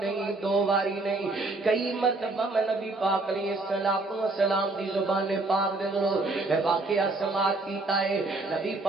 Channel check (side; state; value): left; quieter; 3.2 dB